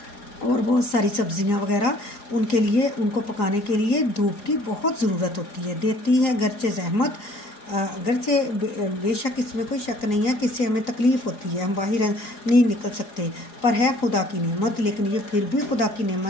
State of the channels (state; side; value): late; right; 4.8 ms